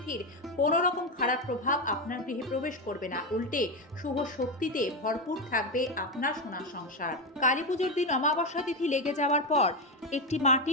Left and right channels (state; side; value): normal; both; correlation 0.12